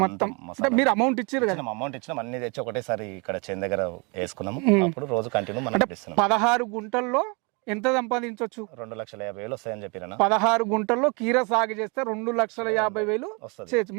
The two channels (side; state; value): left; quieter; 31.2 dB